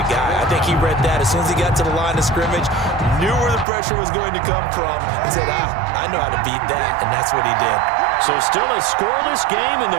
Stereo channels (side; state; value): left; drops out; at 3.7 s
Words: guy. I think he read that as soon as he got to the line of scrimmage, knew where the pressure was going to come from, and said, I know how to beat that, and that's what he did. So still a scoreless game in